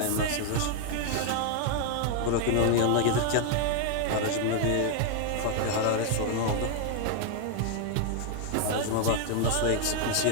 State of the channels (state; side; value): different; both; correlation 0.00